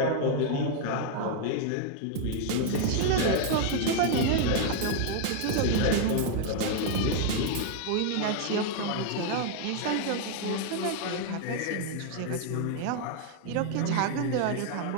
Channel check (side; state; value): both; different; correlation 0.00